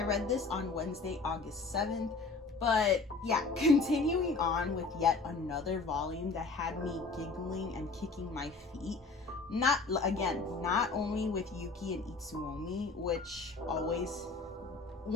read this on Wednesday, August 7th, but yeah, continuing on with yet another volume that had me giggling and kicking my feet. Not only with Yuki and Itsuomi, which always,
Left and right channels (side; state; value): right; quieter; 4.0 dB